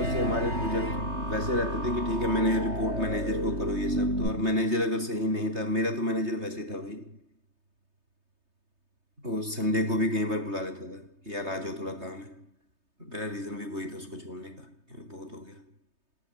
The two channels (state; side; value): late; left; 3.2 ms